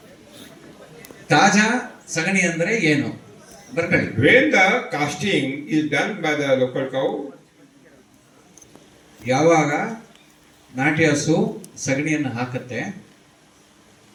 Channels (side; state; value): both; identical; correlation 1.00